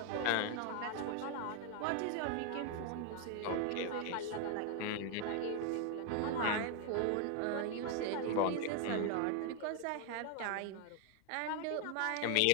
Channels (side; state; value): both; different; correlation 0.00